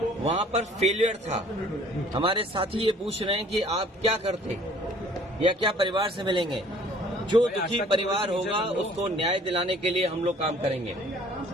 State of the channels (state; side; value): normal; both; correlation 0.54